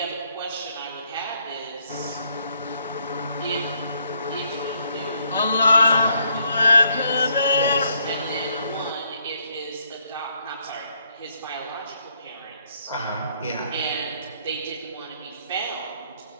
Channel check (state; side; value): inverted; both; correlation -0.71